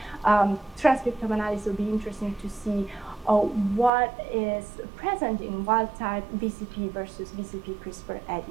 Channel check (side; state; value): left; drops out; at 3.9 s